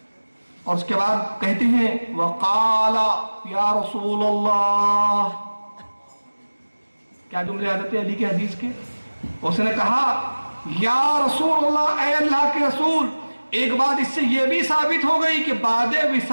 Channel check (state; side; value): inverted; both; correlation -1.00